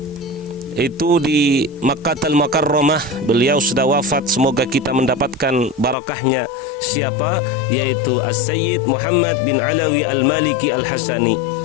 itu di Makkahul Mukarramah, beliau sudah wafat, semoga kita mendapatkan barakahnya. Siapa? Yaitu As-Sayyid Muhammad bin Alawi Al-Maliki Al-Hasani.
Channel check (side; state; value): right; drops out; at 6.0 s